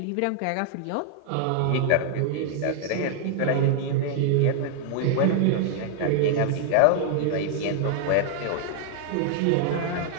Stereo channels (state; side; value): different; both; correlation -0.01